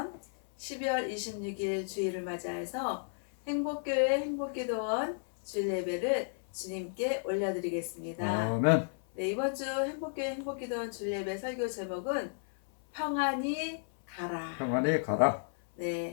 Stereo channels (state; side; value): silent; right; 56 dB below the other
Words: 12월 26일 주일을 맞이해서 행복교회 행복기도원 주일 예배를 주님께 올려드리겠습니다. 아멘. 네, 이번 주 행복교회 행복기도원 주일 예배 설교 제목은 평안히 가라. 평안히 가라.